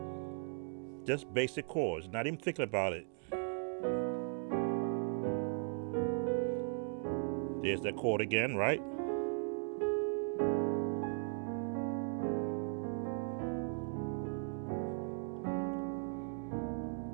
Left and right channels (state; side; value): silent; left; 52 dB below the other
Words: just basic chords, not even thinking about it. There's that chord again, right?